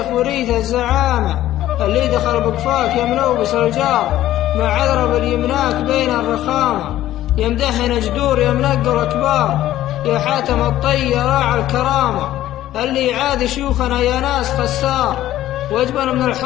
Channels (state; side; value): quieter; right; 13.8 dB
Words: وريث الزعامة. اللي دخل بقفاك يملوبس الجار، مع عذرب اليمناك بين الرخامة. يمدحنا جدور يمنقر كبار، يا حاتم الطي راعى الكرامة. اللي يعادي شيوخنا يا ناس خسار، واجبن من